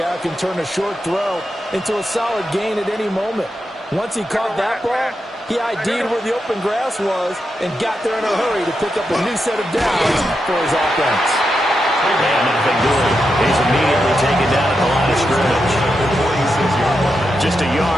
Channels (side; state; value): both; normal; correlation 0.86